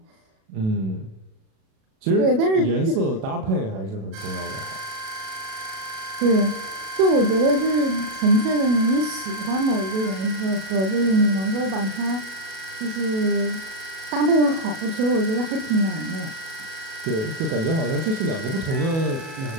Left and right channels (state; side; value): late; left; 37 ms